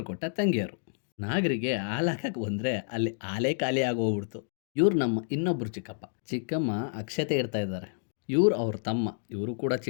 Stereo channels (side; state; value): right; silent; digital silence